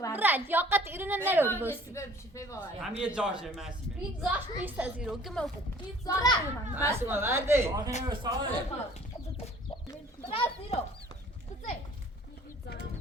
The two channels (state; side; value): normal; both; correlation 0.53